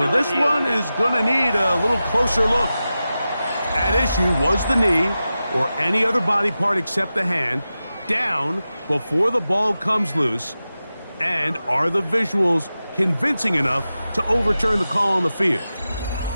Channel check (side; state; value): both; inverted; correlation -0.93